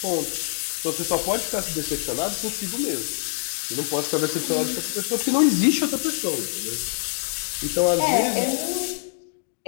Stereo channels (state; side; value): silent; right; digital silence